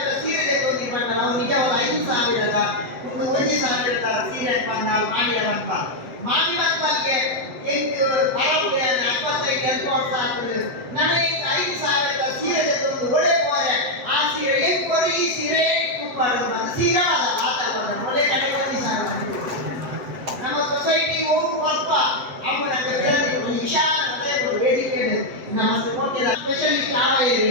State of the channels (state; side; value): late; left; 7.8 ms